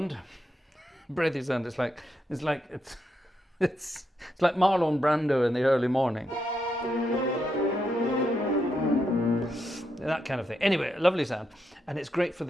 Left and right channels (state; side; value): normal; both; correlation 0.82